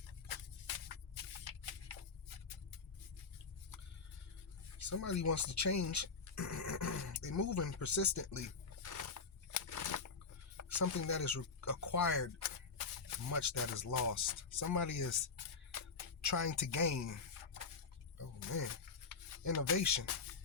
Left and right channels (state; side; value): quieter; right; 4.9 dB